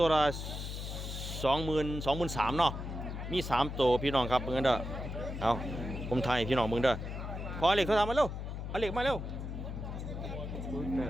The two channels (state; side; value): noise; left; hum, 6 dB below the sound